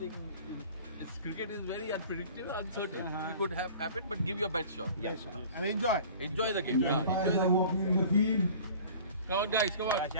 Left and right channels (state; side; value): inverted; both; correlation -0.44